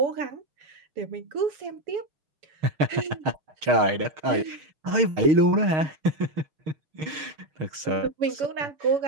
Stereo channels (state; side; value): late; left; 6.5 ms